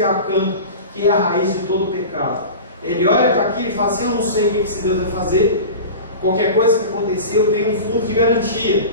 Acã, que é a raiz de todo o pecado. Ele olha para aquilo e fala assim, eu não sei o que esse Deus vai fazer, qualquer coisa que acontecer eu tenho um fundo de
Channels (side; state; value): both; inverted; correlation -0.32